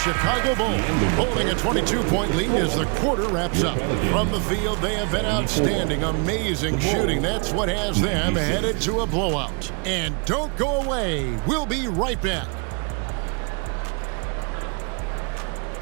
Bulls holding a 22-point lead as the quarter wraps up. From the field, they have been outstanding, amazing shooting. That's what has them headed to a blowout. And don't go away. We'll be right back.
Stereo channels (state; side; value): quieter; left; 36.2 dB